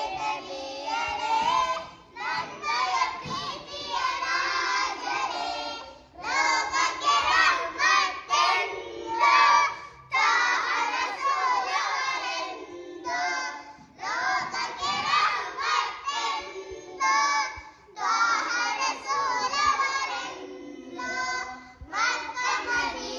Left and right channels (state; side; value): identical; both; correlation 1.00